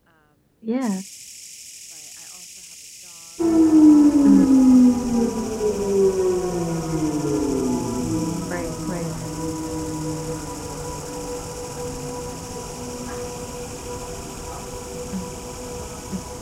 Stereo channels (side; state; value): both; identical; correlation 1.00